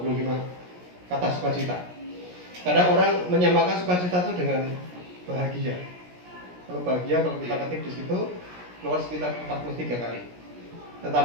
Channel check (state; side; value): late; left; 17 ms